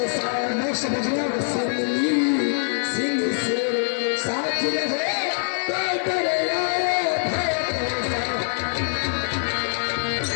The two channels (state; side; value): silent; right; 56 dB below the other